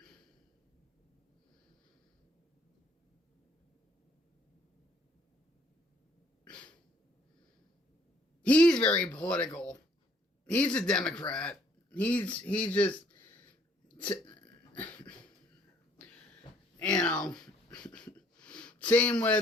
He's very political. He's a Democrat. He's just, you know, same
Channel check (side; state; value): both; normal; correlation 0.63